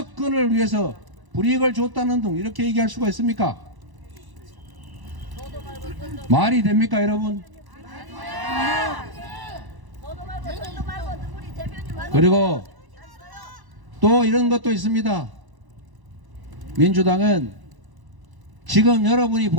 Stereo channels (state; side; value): late; left; 1.0 ms